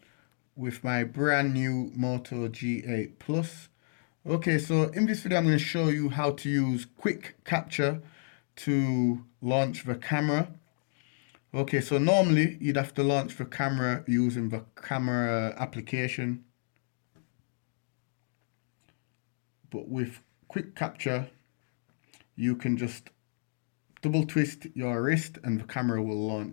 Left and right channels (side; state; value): right; silent; digital silence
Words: with my brand new Moto G8 Plus. Okay, so in this video I'm going to show you how to use quick capture to launch the camera. Okay, so normally you'd have to launch the camera using the camera application, but with quick capture you can just double twist your wrist and the camera will